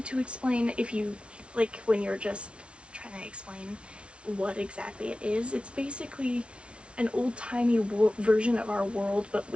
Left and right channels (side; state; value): left; late; 0.059 ms